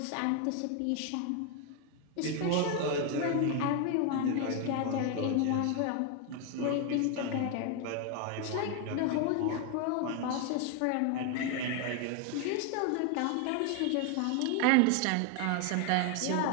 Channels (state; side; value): different; both; correlation 0.01